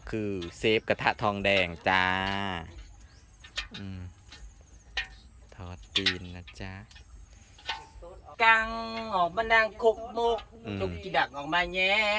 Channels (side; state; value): both; identical; correlation 1.00